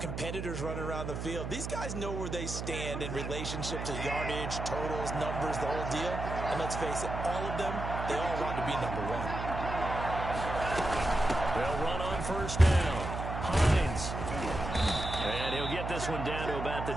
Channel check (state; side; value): noise; right; hum, 5 dB below the sound